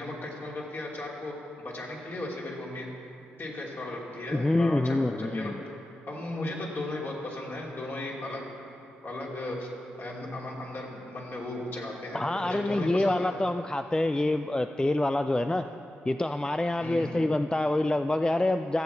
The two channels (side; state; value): both; normal; correlation 0.94